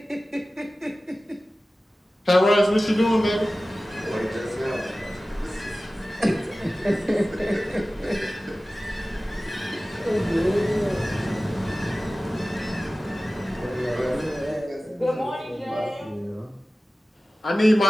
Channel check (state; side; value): normal; both; correlation 0.96